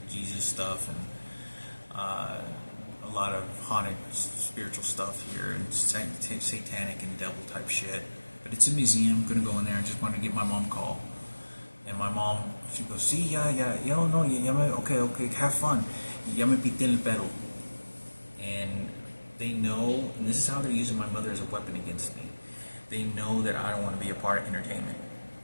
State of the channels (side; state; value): both; inverted; correlation -1.00